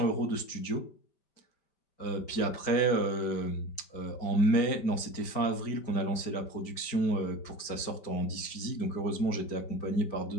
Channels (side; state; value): right; late; 5.1 ms